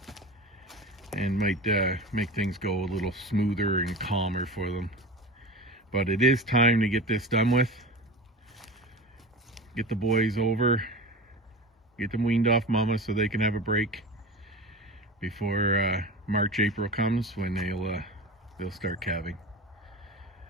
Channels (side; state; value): both; normal; correlation 0.31